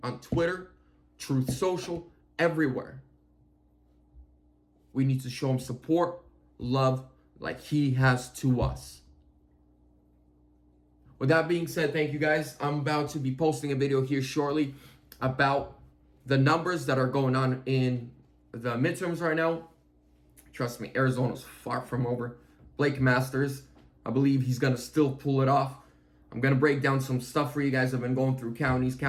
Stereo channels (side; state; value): both; identical; correlation 1.00